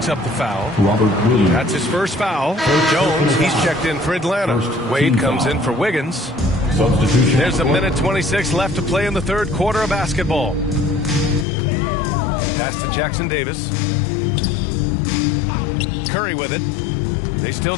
up the foul. That's his first foul. Jones, he's checked in for Atlanta. Wade comes in for Wiggins. There's a minute 26 left to play in the third quarter of basketball. Pass to Jackson Davis. Curry with it. They still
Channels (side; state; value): right; drops out; at 11.5 s